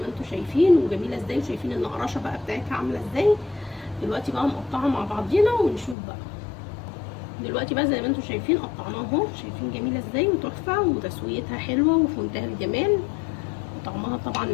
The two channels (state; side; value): drops out; right; at 6.0 s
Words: ما انتوا شايفين وجميله ازاي، وشايفين النقراشه بقى بتاعتها عامله ازاي. دلوقتي بقى نقطعها مع بعضينا ونشوف بقى. دلوقتي بقى زي ما انتوا شايفين قطعناها اهو، شايفين جميله ازاي وتحفه وتسويتها حلوه وفي منتهى الجمال، وطعمها طبعا